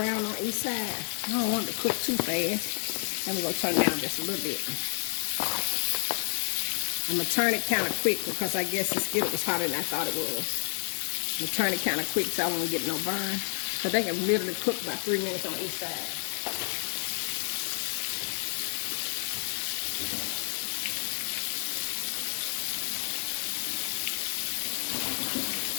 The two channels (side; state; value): right; silent; 58 dB below the other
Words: on each side, I don't want it to cook too fast. I'm going to turn it down just a little bit. I'm going to turn it kind of quick because I guess the skillet was hotter than I thought it was. I'm going to turn it kind of quick so I won't get no burn. Because they can literally cook about 3 minutes on each side.